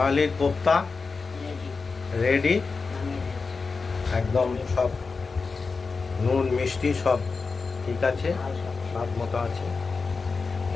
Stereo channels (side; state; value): right; quieter; 4.5 dB